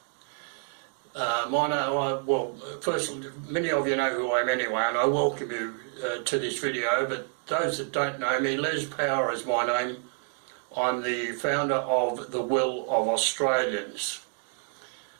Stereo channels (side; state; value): left; silent; 59 dB below the other